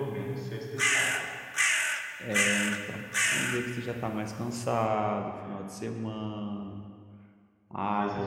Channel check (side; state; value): both; identical; correlation 1.00